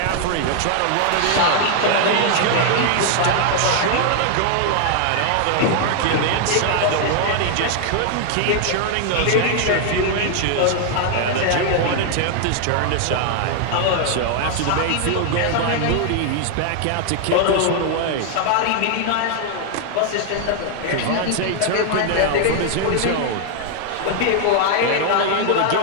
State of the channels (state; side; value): different; both; correlation 0.00